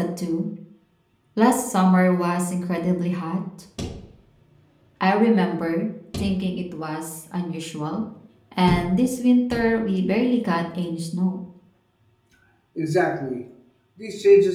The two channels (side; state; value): both; identical; correlation 1.00